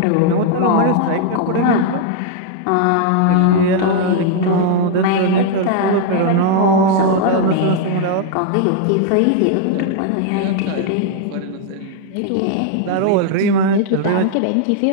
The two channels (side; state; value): both; different; correlation 0.00